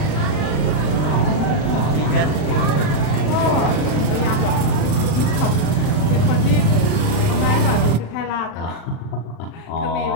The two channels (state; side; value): late; right; 40 ms